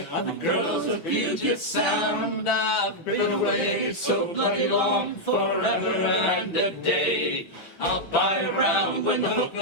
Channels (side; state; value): right; late; 6.0 ms